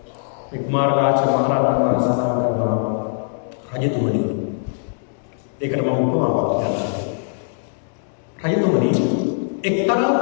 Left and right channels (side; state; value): right; silent; digital silence